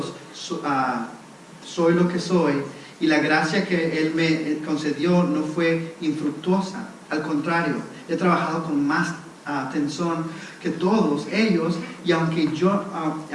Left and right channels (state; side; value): identical; both; correlation 1.00